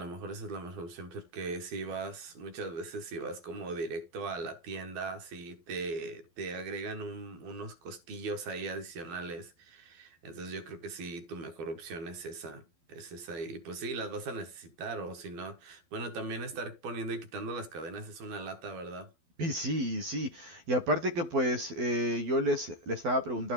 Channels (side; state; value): left; late; 12 ms